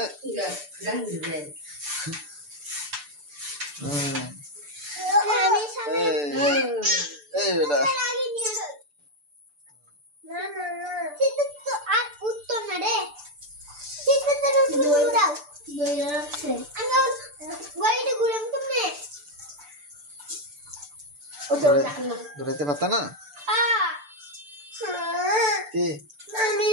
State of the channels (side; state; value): left; late; 6.8 ms